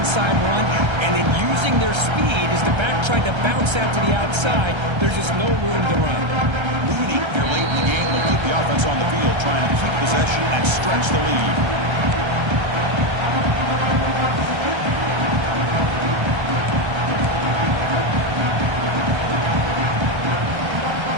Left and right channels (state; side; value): late; left; 1.3 ms